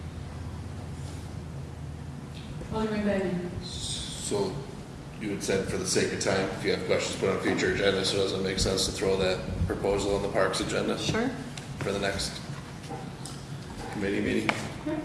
Alderman Bennett. So you had said for the sake of time, if you have questions, put on a future agenda, so it doesn't make sense to throw that proposal on the parks agenda Sure. for the next committee meeting?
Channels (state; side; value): identical; both; correlation 1.00